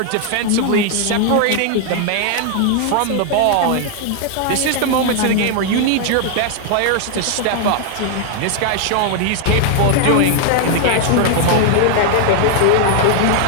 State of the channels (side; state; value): both; different; correlation 0.00